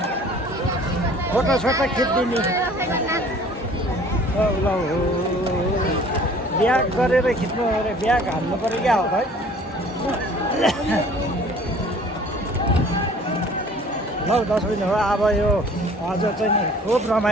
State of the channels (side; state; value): both; normal; correlation 0.50